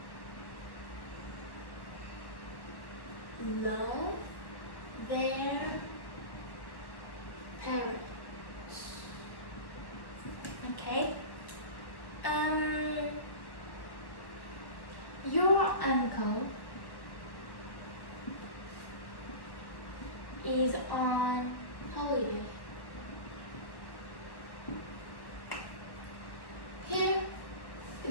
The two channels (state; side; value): late; right; 1.1 ms